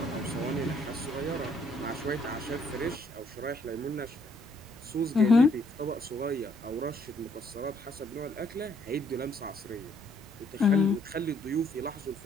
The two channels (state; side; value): normal; both; correlation 0.68